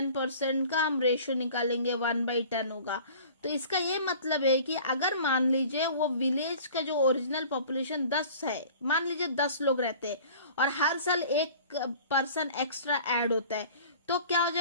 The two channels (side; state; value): both; inverted; correlation -0.45